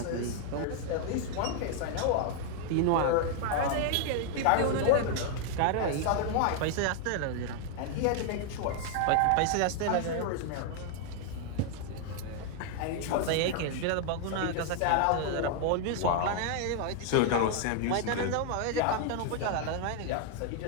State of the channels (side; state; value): both; different; correlation 0.00